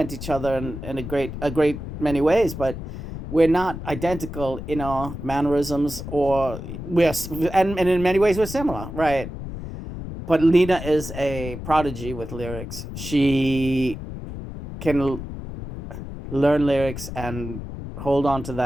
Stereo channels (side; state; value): left; noise; rumble, 9 dB below the sound